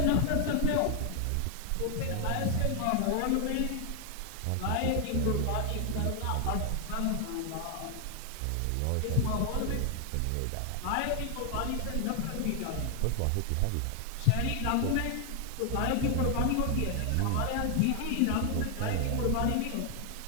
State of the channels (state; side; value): different; both; correlation 0.00